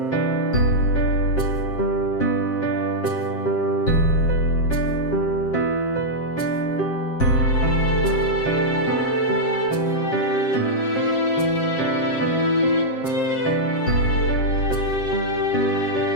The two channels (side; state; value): right; late; 7.5 ms